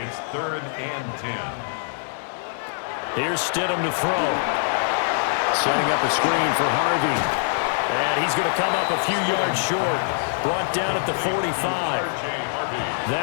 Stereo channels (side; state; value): right; silent; 63 dB below the other